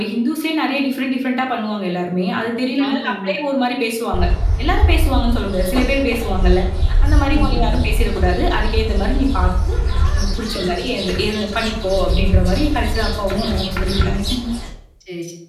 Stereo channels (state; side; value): identical; both; correlation 1.00